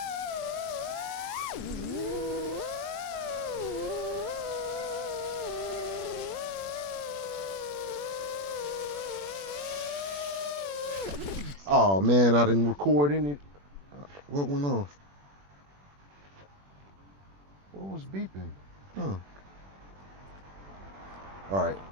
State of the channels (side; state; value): left; late; 21 ms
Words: Oh man, I didn't record any. What went on? What was beeping? Huh. All right.